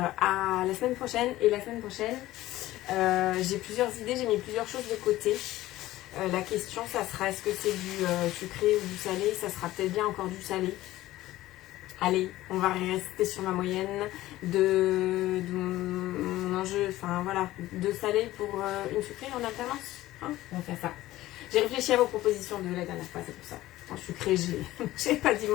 la semaine prochaine. Et la semaine prochaine, j'ai plusieurs idées, j'ai mis plusieurs choses de côté. La question, ça sera est-ce que c'est du sucré ou du salé? Ça sera peut-être bien encore du salé. Allez, on va rester sur ma moyenne de mon enjeu, enfin voilà, de salé pour une sucrée en alternance. Hein, on va faire ça. J'ai réfléchi à vos propositions de la dernière fois, c'est pour ça. En sucré, j'ai pas dit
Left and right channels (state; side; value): quieter; right; 16.1 dB